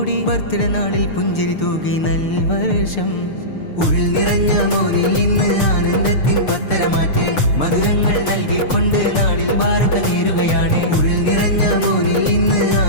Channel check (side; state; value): right; late; 6.7 ms